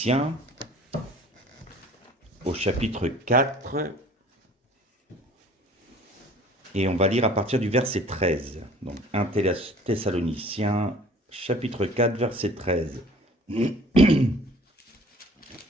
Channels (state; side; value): normal; both; correlation 0.50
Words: au chapitre 4, et on va lire à partir du verset 13. Donc 1 Thessaloniciens, chapitre 4, verset 13.